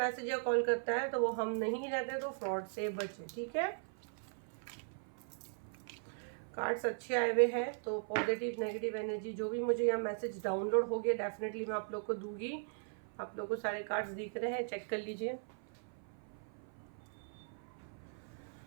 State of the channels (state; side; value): silent; left; 52 dB below the other